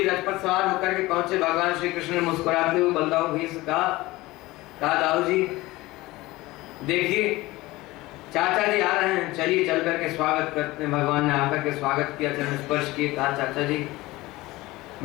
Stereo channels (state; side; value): quieter; right; 19.6 dB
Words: रथ पर सवार होकर के पहुंचे। भगवान श्री कृष्ण ने मुस्कुराते हुए बलदाऊ भैया से कहा दाऊ जी देखिए चाचा जी आ रहे हैं, चलिए चल करके स्वागत करते हैं। भगवान ने आकर के स्वागत किया, चरण स्पर्श किए, कहा चाचा जी